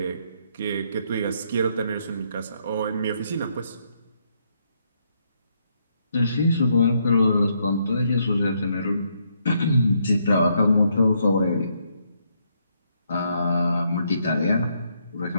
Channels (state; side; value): inverted; both; correlation -0.74